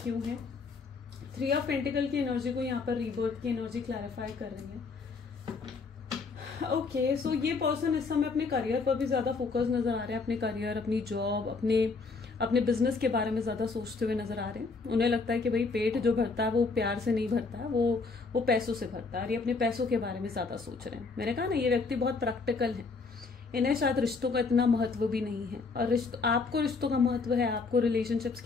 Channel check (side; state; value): right; quieter; 4.3 dB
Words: क्यों है। 3 ऑफ पेंटिकल की एनर्जी को यहाँ पर रीबर्थ की एनर्जी क्लैरिफाई कर रही है। ओके, सो ये पर्सन इस समय अपने करियर पर भी ज्यादा फोकस नजर आ रहा है, अपने करियर, अपनी जॉब, अपने अपने बिजनेस के बारे में ज्यादा सोचते हुए नजर आ रहे हैं। उन्हें लगता है कि भाई पेट जो भरता है वो प्यार से नहीं भरता है, वो पैसों से भरता है, और ये अपने पैसों के बारे में ज्यादा सोच रहे हैं। मैंने कहा ना, ये व्यक्ति बहुत प्रैक्टिकल है, इन्हें शायद रिश्तों का इतना महत्व भी नहीं है। और आपको रिश्तों का महत्व है, आपको रिलेशनशिप्स